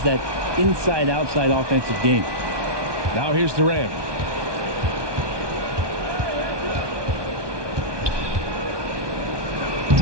that inside-outside offensive game. Now here's Durant.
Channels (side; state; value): left; late; 1.2 ms